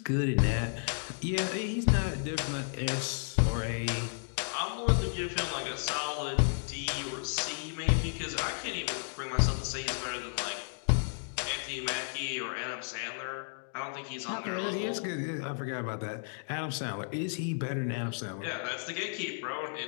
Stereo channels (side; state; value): right; silent; digital silence